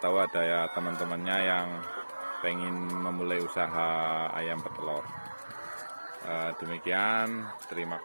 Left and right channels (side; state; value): both; inverted; correlation -1.00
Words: ada ya teman-temannya yang pengen memulai usaha ayam petelur. Demikian, terima